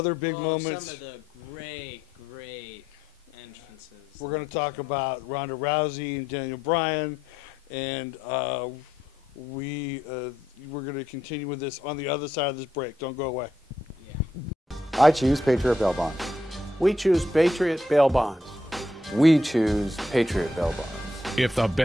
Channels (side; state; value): both; normal; correlation 0.78